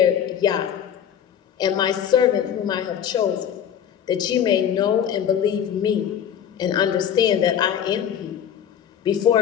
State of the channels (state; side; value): quieter; right; 9.1 dB